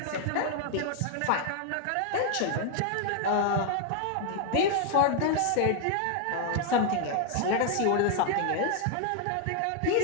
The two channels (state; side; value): different; both; correlation 0.00